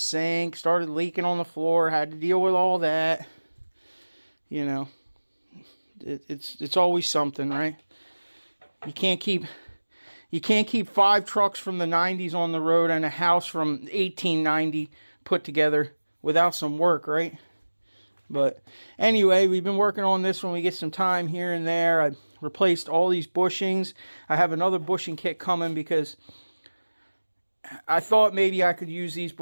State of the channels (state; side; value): inverted; both; correlation -1.00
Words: started leaking on the floor, had to deal with all that. You know, it's always something, right? You can't keep 5 trucks from the 90s on the road and a house from 1890 put together without some work, right? But anyway, we've been working on this when we get some time here and there. I replaced all these bushings. I have another bushing kit coming because I thought maybe I could use these